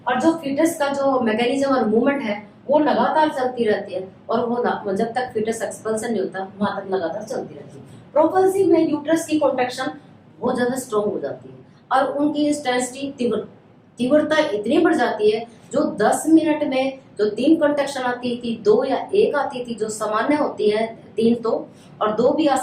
और जो फीटस का जो मैकेनिज्म और मूवमेंट है वो लगातार चलती रहती है, और वो जब तक फीटस एक्सपल्सन नहीं होता वहां तक लगातार चलती रहती है। प्रोपल्सिव में यूट्रस की कॉन्ट्रैक्शन बहुत ज्यादा स्ट्रॉन्ग हो जाती है और उनकी इंटेंसिटी तीव्रता इतनी बढ़ जाती है, जो 10 मिनट में जो 3 कॉन्ट्रैक्शन आती थी, 2 या 1 आती थी, जो सामान्य होती है 3 तो, और 2 भी आ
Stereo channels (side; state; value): both; identical; correlation 1.00